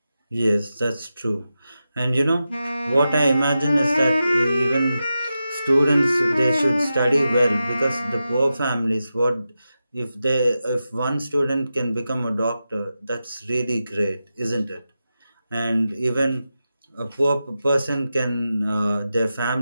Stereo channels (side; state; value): both; inverted; correlation -0.91